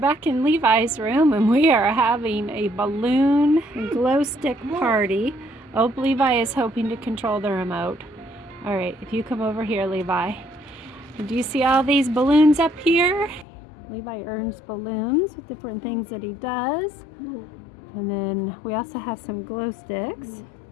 in Levi's room and we are having a balloon glow stick party. Oh, Levi is hoping to control the remote. All right, if you come over here, Levi. Do you see all these balloons up here? Levi earns balloons with different things that he does. And then we also have some glow sticks.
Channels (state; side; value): drops out; right; at 13.5 s